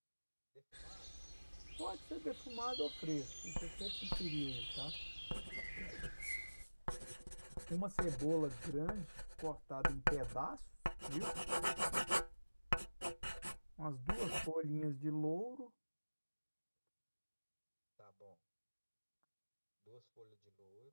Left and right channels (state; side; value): inverted; both; correlation -1.00